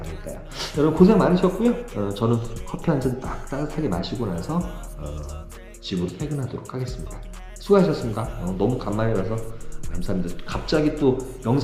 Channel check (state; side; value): identical; both; correlation 1.00